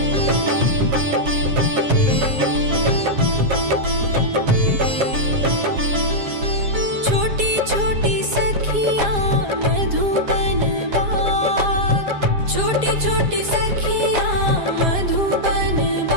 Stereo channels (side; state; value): left; late; 7.3 ms